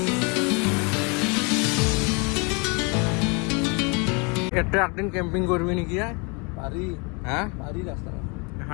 এটা একদিন কেম্পিং কৰবি নাকি পাৰি হ্যাঁ পাৰি ৰাস্তা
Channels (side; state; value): right; quieter; 32.0 dB